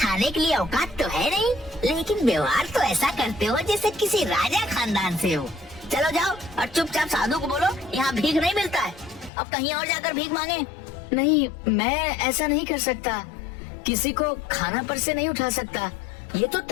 के लिए औकात तो है नहीं, लेकिन व्यवहार तो ऐसा करते हो जैसे किसी राजा खानदान से हो। चलो जाओ और चुपचाप साधु को बोलो यहाँ भीख नहीं मिलता है, अब कहीं और जाकर भीख मांगे। नहीं, मैं ऐसा नहीं कर सकता। किसी को खाना पर से नहीं उठा सकता। ये तो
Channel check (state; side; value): drops out; right; at 9.3 s